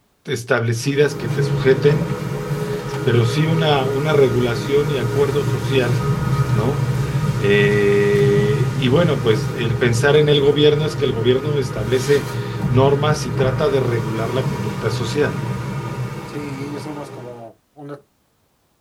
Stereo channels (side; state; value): both; identical; correlation 1.00